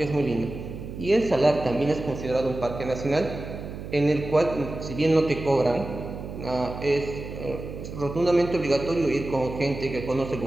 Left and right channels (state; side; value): noise; right; hum, 10 dB below the sound